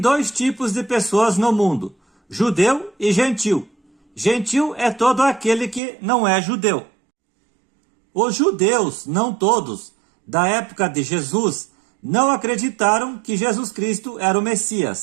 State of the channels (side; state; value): left; drops out; at 5.8 s